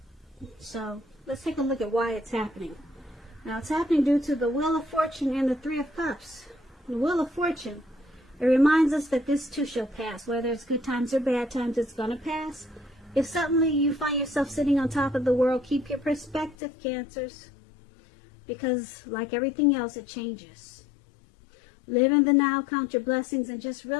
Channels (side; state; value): right; drops out; at 16.6 s